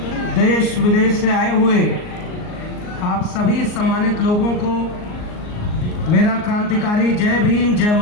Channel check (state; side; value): late; right; 38 ms